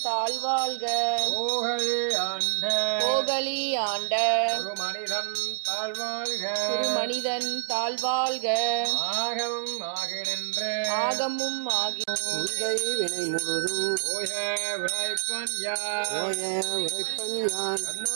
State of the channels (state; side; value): silent; left; digital silence